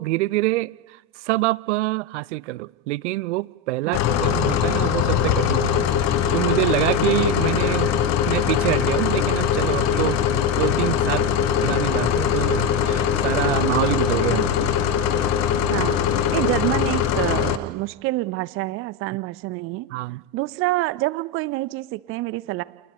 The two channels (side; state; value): both; normal; correlation 0.12